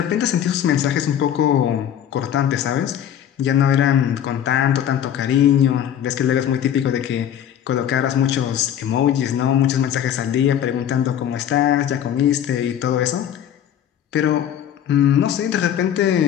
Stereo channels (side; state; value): right; quieter; 10.0 dB